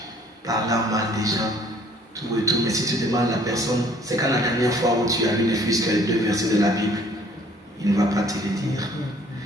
parlant mal des gens, tout et tout. Mais si tu demandes à la personne, c'est quand la dernière fois où tu as lu ne fût-ce que les 2 versets de la Bible, il ne va pas te le dire.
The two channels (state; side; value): normal; both; correlation 0.58